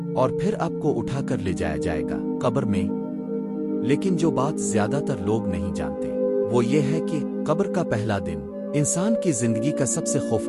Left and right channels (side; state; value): both; identical; correlation 1.00